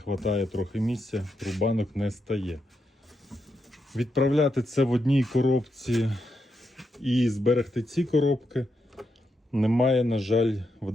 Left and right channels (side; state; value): both; normal; correlation 0.83